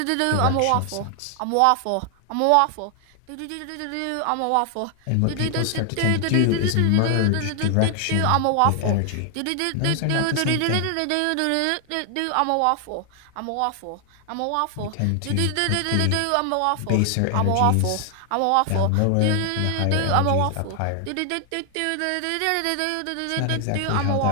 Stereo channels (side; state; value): both; different; correlation 0.00